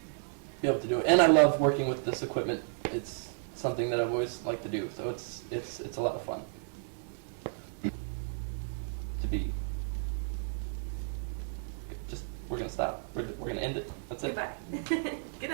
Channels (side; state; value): left; silent; 56 dB below the other